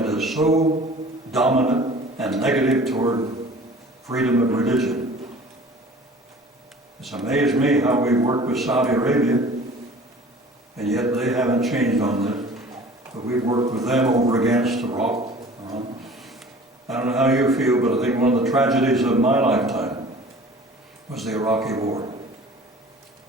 is so dominant and negative toward freedom of religion. It's amazed me how we work with Saudi Arabia, and yet they haven't changed on this. But we've worked with them over against Iraq. I don't know how you feel, but I think one of the tragedies of my lifetime was the Iraqi war.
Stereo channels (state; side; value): normal; both; correlation 0.45